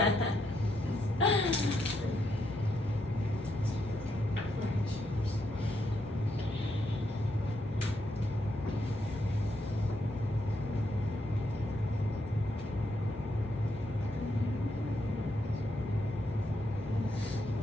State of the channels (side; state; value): both; normal; correlation 0.79